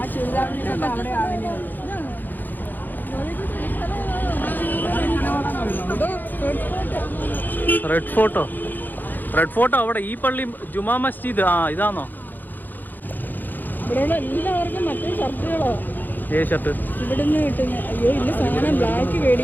റെഡ് ഫോട്ടോ അവിടെ ഈ പള്ളി ജുമാ മസ്ജിദ്. ഇതാണോ? ഇവിടെയുള്ള എല്ലാവർക്കും മറ്റേ ഷർട്ടുകളോ? ഷർട്ട് ഇവിടുന്ന് കിട്ടുന്ന. അയ്യോ ഇല്ല, സാധനം ബ്ലാക്ക്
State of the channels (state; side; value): late; right; 0.087 ms